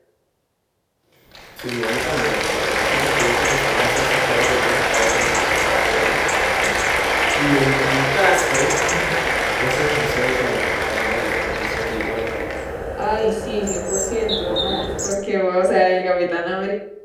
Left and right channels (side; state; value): both; identical; correlation 1.00